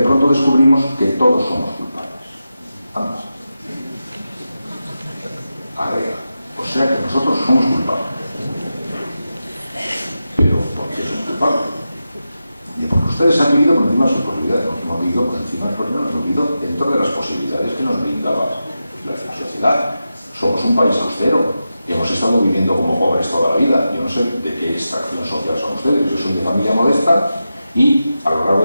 pronto descubrimos que todos somos culpables. Vamos. Agrega. O sea que nosotros somos culpables. Pero ¿por qué somos culpables? Porque ustedes han vivido por encima de sus posibilidades, no hemos vivido por encima de sus posibilidades, hemos vivido dentro de las posibilidades que nos brindaba la sociedad. Somos un país austero, hemos estado viviendo como pobres toda la vida. Yo no sé de qué extracción social son ustedes, yo soy de familia modesta y a lo largo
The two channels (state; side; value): inverted; both; correlation -0.91